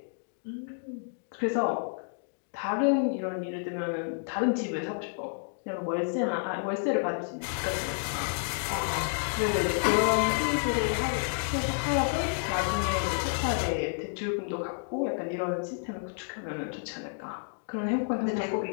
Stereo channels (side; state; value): right; silent; digital silence